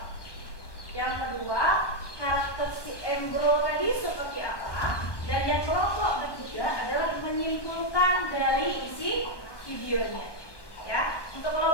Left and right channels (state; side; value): late; right; 1.2 ms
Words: Yang kedua, karakter si Embro tadi seperti apa. Dan yang kelompok ketiga adalah menyimpulkan dari isi videonya. Ya, untuk